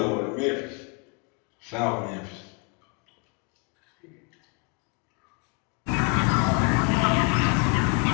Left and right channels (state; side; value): quieter; right; 34.9 dB